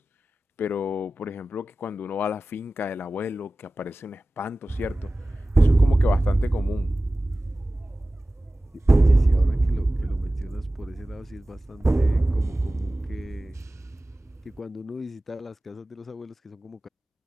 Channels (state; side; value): normal; both; correlation 0.96